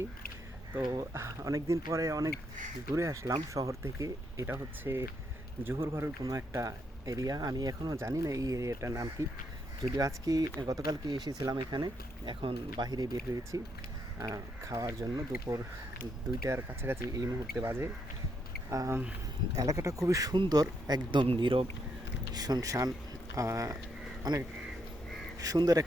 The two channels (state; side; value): normal; both; correlation 0.77